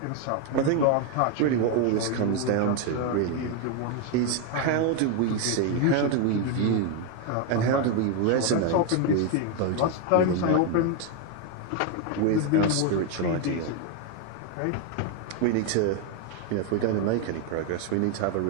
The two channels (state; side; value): different; both; correlation 0.01